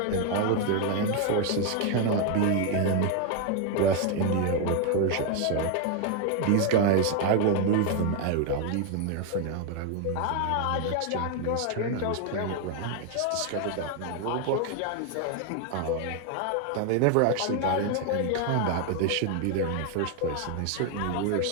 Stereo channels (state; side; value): different; both; correlation 0.01